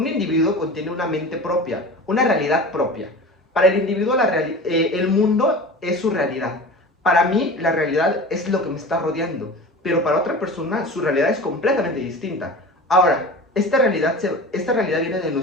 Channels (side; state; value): both; normal; correlation 0.35